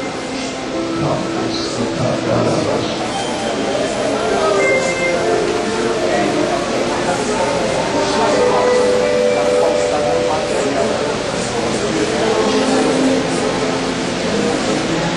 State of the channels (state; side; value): identical; both; correlation 1.00